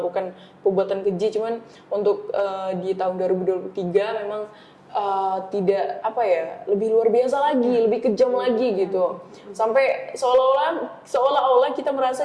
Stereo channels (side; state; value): both; identical; correlation 1.00